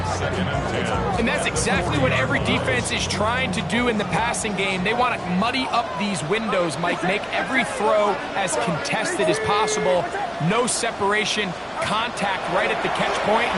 2nd and 10. And that's exactly what every defense is trying to do in the passing game. They want to muddy up these windows, Mike, make every throw as contested as possible. No separation, contact right at the catch point,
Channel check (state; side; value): identical; both; correlation 1.00